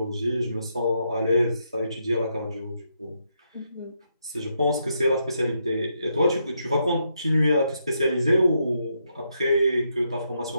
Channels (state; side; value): inverted; both; correlation -0.79